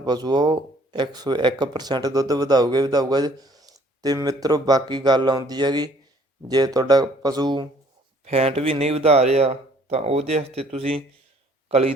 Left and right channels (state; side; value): normal; both; correlation 0.59